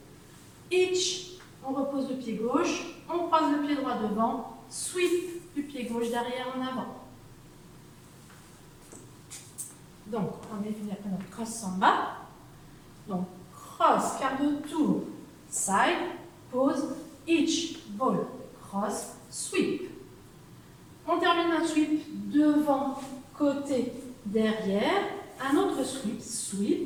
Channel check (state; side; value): identical; both; correlation 1.00